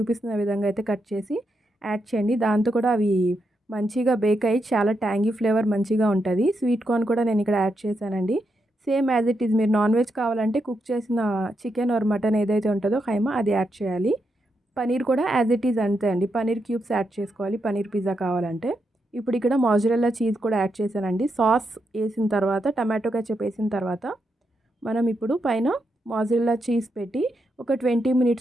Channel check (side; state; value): both; normal; correlation 0.83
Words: విధంగా అయితే కట్ చేసి యాడ్ చేయండి. దాంతో కూడా అవి మంచిగా బేక్ అయ్యి చాలా ట్యాంగీ ఫ్లేవర్ మంచిగా ఉంటది. స్వీట్ కార్న్ కూడా నేను ఇక్కడ యాడ్ చేశానండి. సేమ్ యాజ్ ఇట్ ఈజ్ మీరు నాన్ వెజ్ కావాలంటే కుక్ చేసిన చికెన్ ఆర్ మటన్ ఏదైతే ఉంటుందో ఖైమా అది యాడ్ చేయాలి. పనీర్ కూడా యాజ్ ఇట్ ఈజ్ అంతే అండి. పనీర్ క్యూబ్స్ యాడ్ చేసుకోవాలి పనీర్ పిజ్జా కావాలంటే. ఇప్పుడు ఇక్కడ మోజరెల్లా చీజ్ కూడా యాడ్ చేశానండి. సాస్ ఏసిన తర్వాత టమాటో కెచప్ ఏసిన తర్వాత మనం ఇప్పుడు పైన మోజరెల్లా చీజ్ పెట్టి ఒక 20